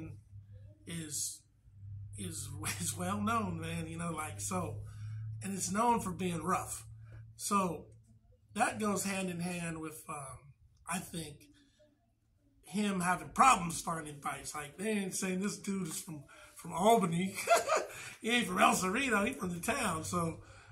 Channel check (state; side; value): identical; both; correlation 1.00